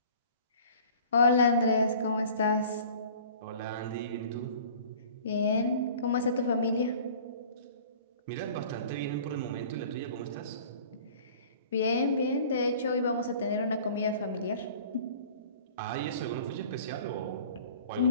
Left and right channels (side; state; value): both; inverted; correlation -0.47